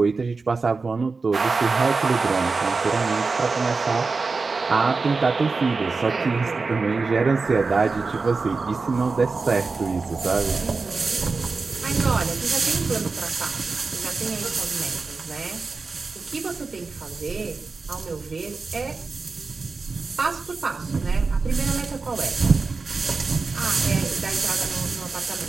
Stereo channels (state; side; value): quieter; left; 4.2 dB